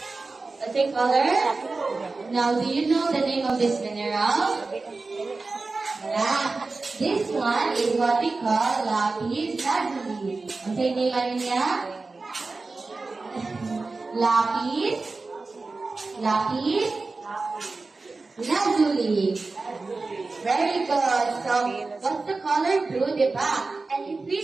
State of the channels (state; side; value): quieter; left; 3.7 dB